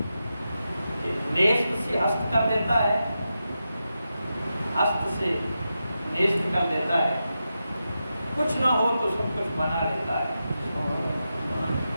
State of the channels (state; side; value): inverted; both; correlation -0.89